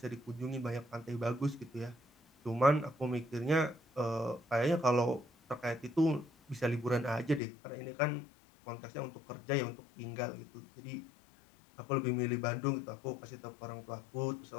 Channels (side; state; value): right; drops out; at 7.4 s